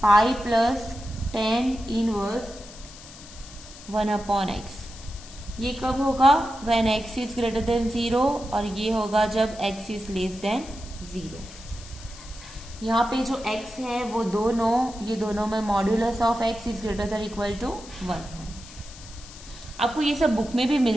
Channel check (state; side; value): noise; left; hiss, 17 dB below the sound